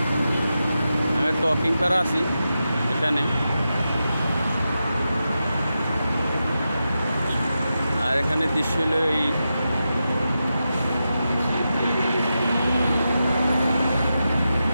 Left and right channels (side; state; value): both; inverted; correlation -0.90